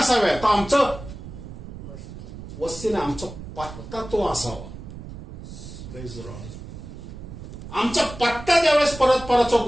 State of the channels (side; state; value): right; noise; rumble, 12 dB below the sound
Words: तर आमचं वस्ती नाही, आमचा पत्ता तो असावा. आमचा पत्ता ज्यावेळेस परतपराच्या